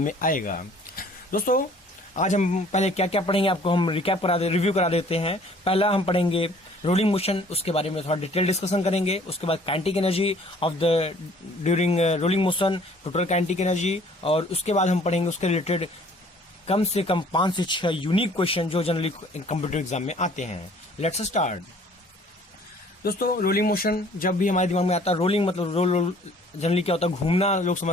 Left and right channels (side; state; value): both; normal; correlation 0.55